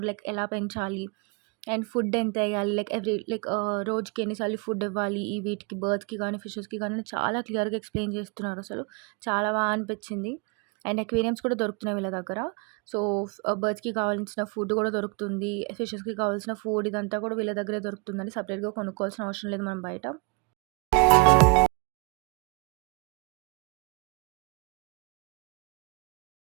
లైక్ ఎలా పెంచాలి? అండ్ ఫుడ్ ఎంతెయ్యాలి? లైక్ రోజుకి ఎన్ని సార్లు ఫుడ్ ఇవ్వాలి? ఈ వీటికి బర్డ్స్‌కి గానీ, ఫిషెస్‌కి గానీ చాలా క్లియర్‌గా ఎక్స్‌ప్లెయిన్ చేస్తున్నారసలు. చాలా అనిపిచ్చింది. అండ్ అక్వేరియంస్ కూడా దొరుకుతున్నాయి వీళ్ళ దగ్గర. సో, బర్డ్స్‌కి కావాల్సిన ఫుడ్ కూడా దొరుకుతుంది. ఫిషెస్‌కి కావాల్సిన ఫుడ్ ఇదంతా కూడా వీళ్ళ దగ్గరే దొరుకుతుందండి. సెపరేట్‌గా కొనుక్కోవాల్సిన అవసరం లేదు మనం బయట.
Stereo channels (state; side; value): quieter; left; 31.1 dB